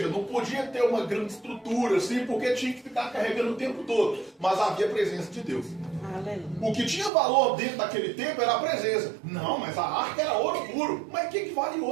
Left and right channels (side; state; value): left; drops out; at 7.1 s